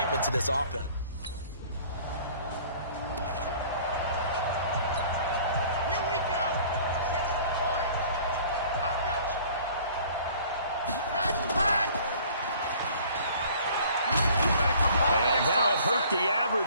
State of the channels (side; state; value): both; inverted; correlation -0.52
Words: to this offense. up the